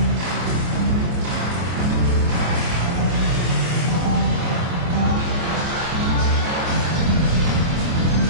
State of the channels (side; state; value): left; late; 24 ms